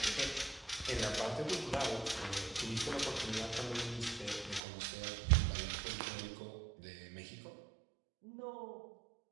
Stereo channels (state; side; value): drops out; left; at 4.6 s